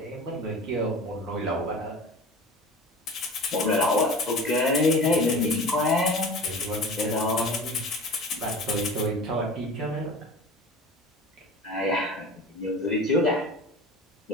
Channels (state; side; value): normal; both; correlation 0.36